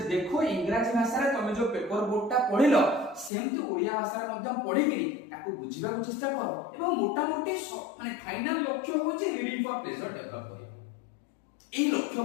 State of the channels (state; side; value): drops out; right; at 3.3 s